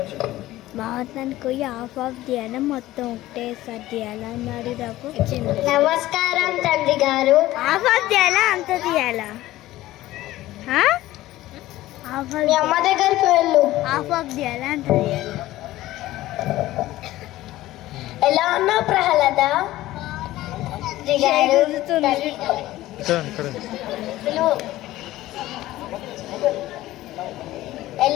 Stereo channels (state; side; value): quieter; right; 16.0 dB